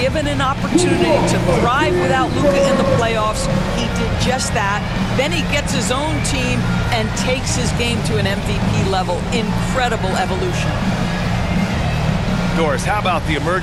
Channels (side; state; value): both; identical; correlation 1.00